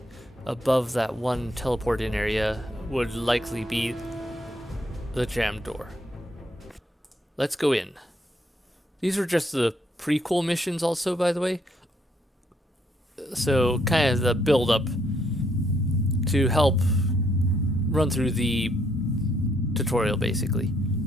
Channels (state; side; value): normal; both; correlation 0.72